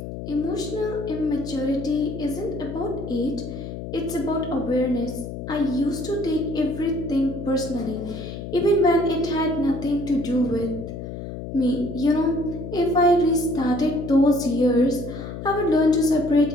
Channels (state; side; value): noise; left; hum, 8 dB below the sound